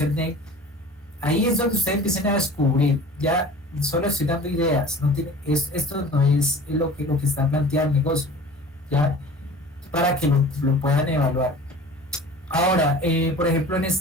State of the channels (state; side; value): normal; both; correlation 0.41